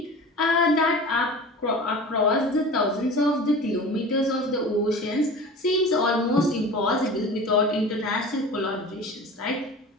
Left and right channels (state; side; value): normal; both; correlation 0.36